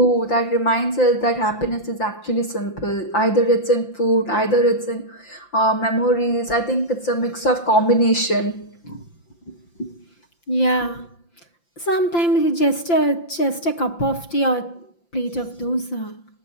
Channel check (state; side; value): late; right; 5.8 ms